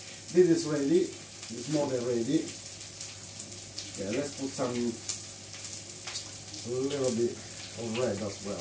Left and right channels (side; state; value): both; identical; correlation 1.00